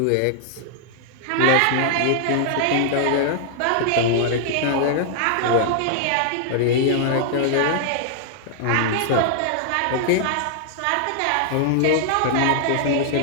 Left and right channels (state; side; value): different; both; correlation -0.01